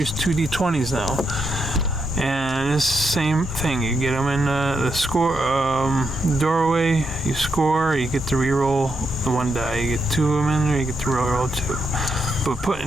2 D20s now. And it's the same thing. You get them in the score doorway, you score, you get to re-roll the 1 die. You get 2 of them in there, you get to roll 2. But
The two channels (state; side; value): normal; both; correlation 0.82